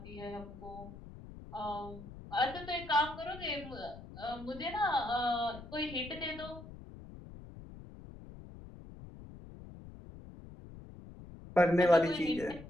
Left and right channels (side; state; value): left; noise; rumble, 15 dB below the sound